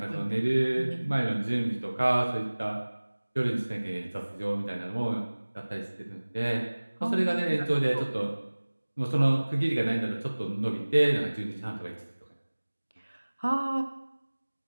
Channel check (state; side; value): inverted; both; correlation -1.00